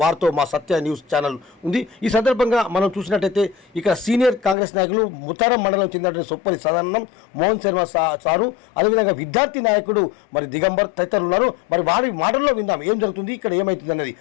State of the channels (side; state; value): right; drops out; at 4.5 s